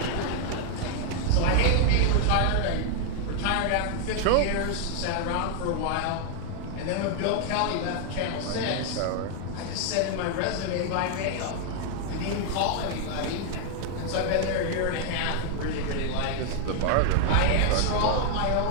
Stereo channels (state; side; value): different; both; correlation 0.00